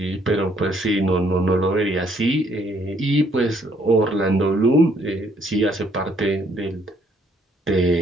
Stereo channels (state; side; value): normal; both; correlation 0.67